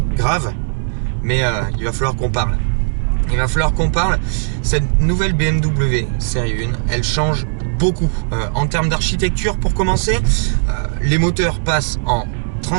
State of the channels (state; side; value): silent; left; digital silence